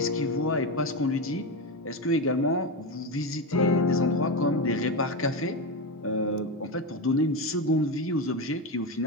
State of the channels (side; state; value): both; normal; correlation 0.14